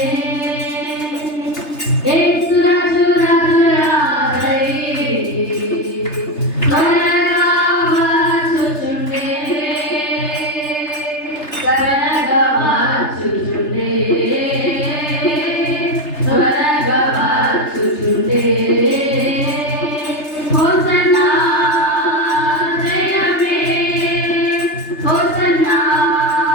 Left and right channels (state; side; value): late; right; 3.3 ms